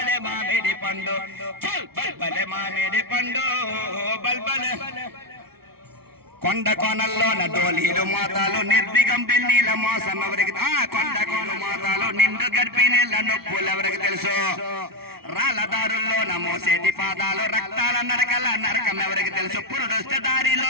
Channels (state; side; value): late; left; 0.95 ms